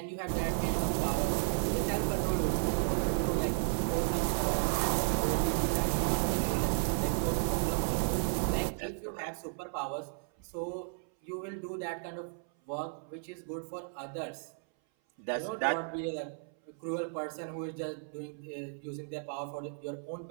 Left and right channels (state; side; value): silent; left; 55 dB below the other